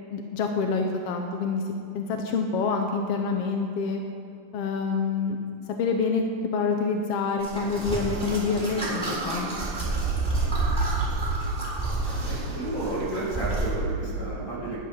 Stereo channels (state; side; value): normal; both; correlation 0.04